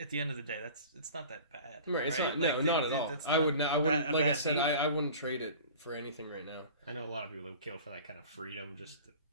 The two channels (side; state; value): both; inverted; correlation -0.42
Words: the end of the day, it's not that bad. Right, it's right? not. No, not at all. I wouldn't. Like I said, I wouldn't trade it for anything right now. I know a lot of people that would kill for that kind of freedom. Just